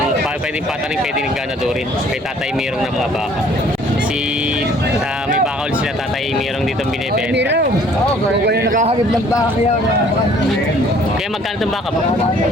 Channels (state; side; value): normal; both; correlation 0.57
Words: pwedeng pataning, pwedeng ganadorin. Kay Tatay Merong ng mga baka. May baka ulit sila Tatay Merong dito binibenta. Mirong! Oo, kung yung nakahabib ng baka yan. Kaya magkano itong baka mo?